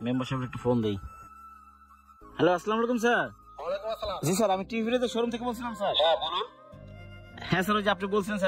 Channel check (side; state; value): both; identical; correlation 1.00